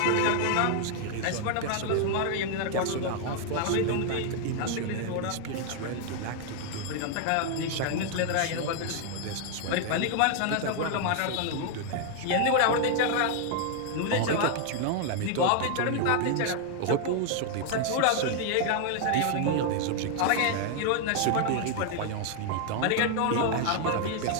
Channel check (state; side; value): different; both; correlation 0.00